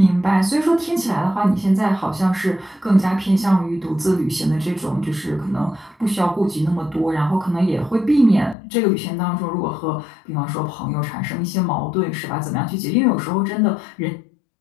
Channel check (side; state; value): right; drops out; at 8.6 s